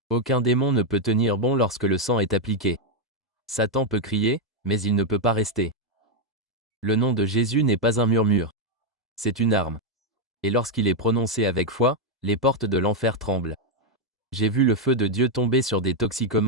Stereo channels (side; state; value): both; normal; correlation 0.01